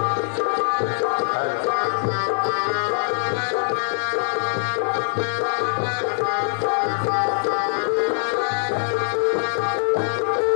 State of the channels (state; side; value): silent; right; 64 dB below the other